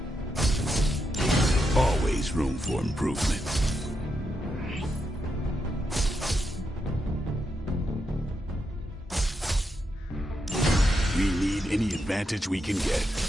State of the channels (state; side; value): normal; both; correlation 0.83